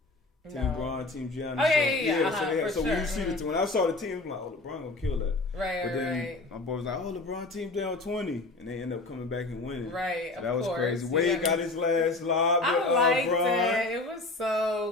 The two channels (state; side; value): quieter; right; 3.2 dB